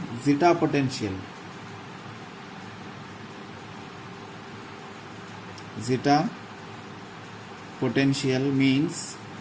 zeta potential. Zeta potential means,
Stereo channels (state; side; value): identical; both; correlation 1.00